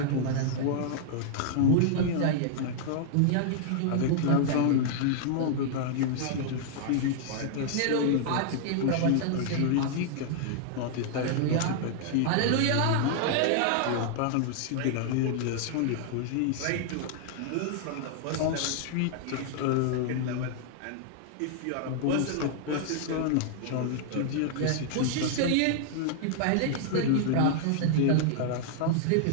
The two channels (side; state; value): both; different; correlation -0.01